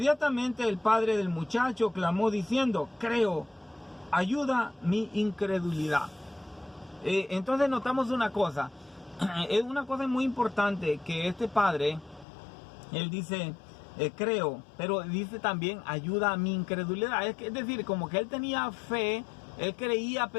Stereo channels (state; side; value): drops out; right; at 12.2 s